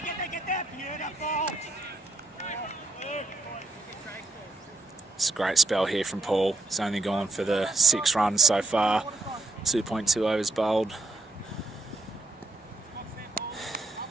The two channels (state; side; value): quieter; left; 3.0 dB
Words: It's a great spell here from Paul. He's only gone for the 6 runs so far. 2.2 overs bowled.